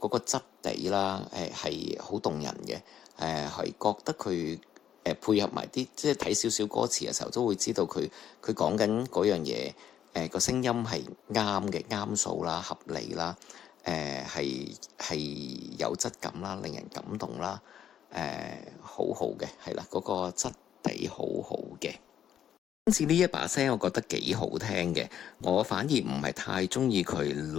質地啦，係好動人嘅。係覺得佢配合埋啲即係睇少少歌詞嘅時候，都會知道佢講緊嗰樣嘢，個聲音係啱嘅，啱數啦，合理啦。係有質感啦，令人感動啦，好好嘅，係啦，嗰個質地好好嘅。今次呢一把聲，我覺得幾好聽嘅，我反而唔係太中意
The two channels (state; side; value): quieter; right; 9.9 dB